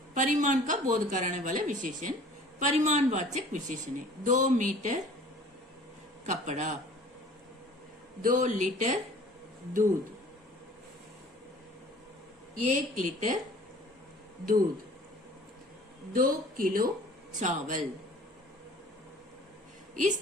परिमाण का बोध कराने वाला विशेषण परिमाणवाचक विशेषण है। 2 मीटर कपड़ा, 2 लीटर दूध, 1 लीटर दूध, 2 किलो चावल।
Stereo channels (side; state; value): both; normal; correlation 0.49